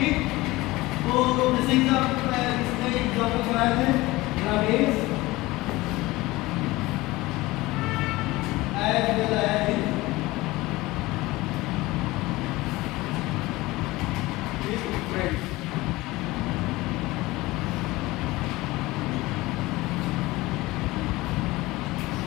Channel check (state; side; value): quieter; right; 20.0 dB